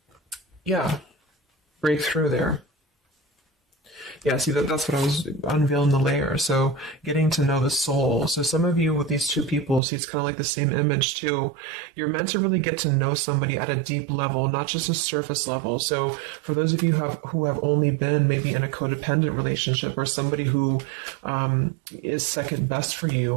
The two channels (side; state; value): left; drops out; at 9.8 s